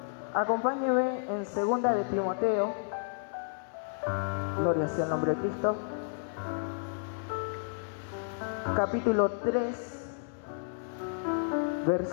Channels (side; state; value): right; silent; digital silence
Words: Acompáñeme en 2 de Timoteo. Gloria sea el nombre de Cristo. Capítulo 3,